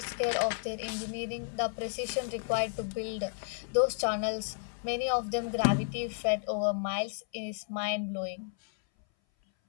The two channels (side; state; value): right; silent; 56 dB below the other